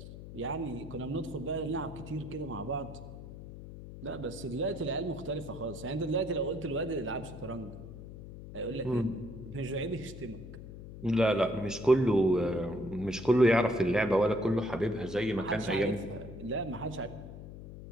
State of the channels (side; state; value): left; noise; hum, 13 dB below the sound